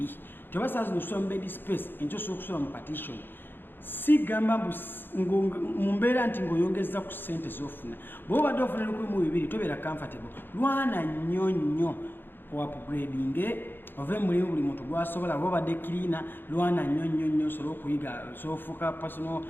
Tebasaazi nosula mu bed space enkyo osobola okusula mu partition, si gamba mu mbeera nti ng'oyongeza ku ssente z'ofuna. Bw'oba badde ofuna 1200 tobeera comfortable, lwana nnyo upgrading ove mulimu buli muntu gwasobola. Bw'oba badde cleaner lwana nnyo osobola okuyiga, osobola ofuuka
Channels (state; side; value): late; right; 0.098 ms